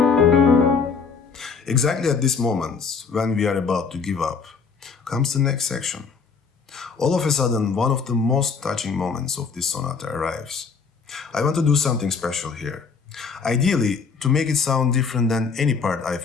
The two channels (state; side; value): quieter; right; 5.3 dB